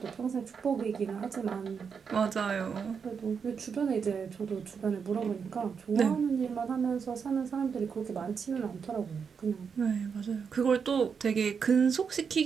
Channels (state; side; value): quieter; left; 6.3 dB